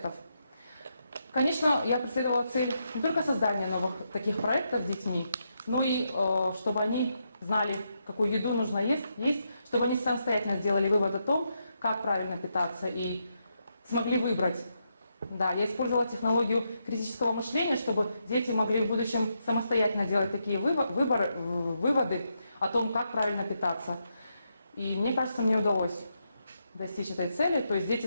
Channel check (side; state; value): both; inverted; correlation -0.81